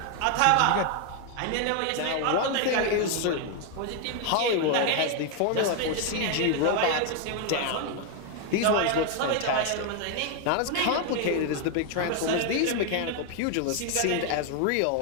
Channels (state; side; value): different; both; correlation 0.01